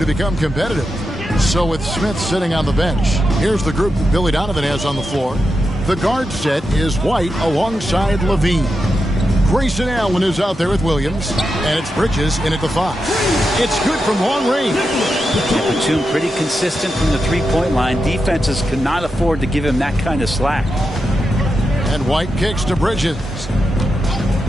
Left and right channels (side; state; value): both; normal; correlation 0.88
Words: become competitive. So with Smith sitting on the bench, here's the group that Billy Donovan has on the floor. The guard set is White alongside Levine. Grayson Allen is out there with Williams, and it's Bridges in at the 5. It's good from long range. Batum pretty consistent from the three-point line. Defenses cannot afford to give him that kind of slack. And White kicks to Bridges.